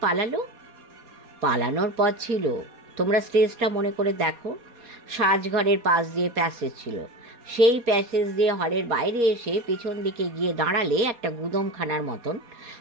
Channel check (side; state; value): left; late; 4.2 ms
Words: পালালো? পালানোর পথ ছিল, তোমরা স্টেজটা মনে করে দেখো। সাজঘরের পাশ দিয়ে প্যাসেজ ছিল। সেই প্যাসেজ দিয়ে হলের বাইরে এসে পিছন দিকে গিয়ে দাঁড়ালে একটা গুদমখানার মতন,